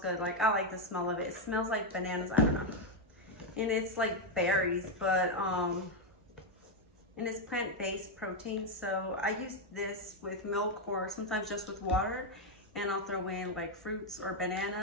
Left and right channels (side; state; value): both; normal; correlation 0.03